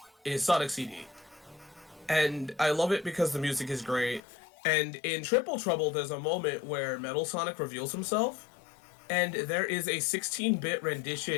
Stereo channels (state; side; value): drops out; right; at 4.2 s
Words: is Sonic CD. And I love it because the music is great. And in Triple Trouble, there's a moment where Metal Sonic reveals himself, and there is a 16-bit